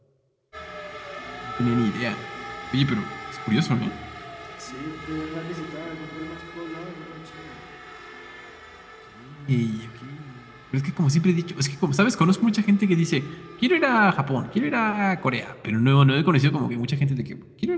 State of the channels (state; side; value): identical; both; correlation 1.00